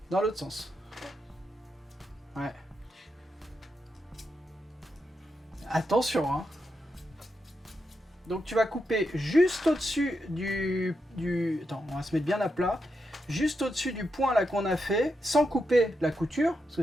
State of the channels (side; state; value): both; normal; correlation 0.85